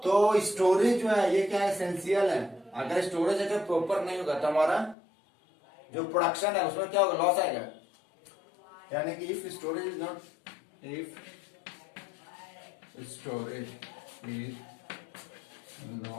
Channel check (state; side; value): drops out; right; at 5.0 s